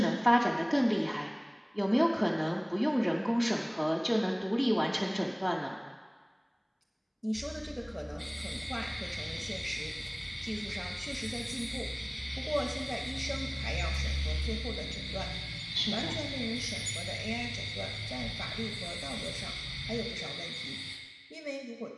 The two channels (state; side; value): identical; both; correlation 1.00